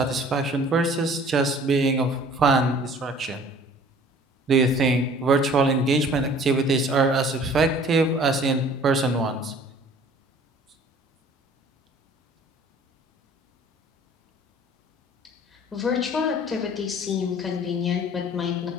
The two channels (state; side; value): normal; both; correlation 0.51